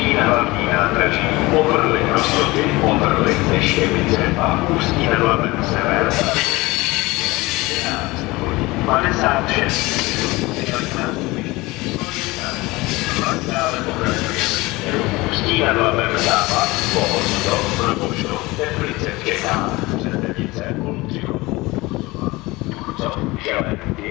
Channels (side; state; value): right; quieter; 21.6 dB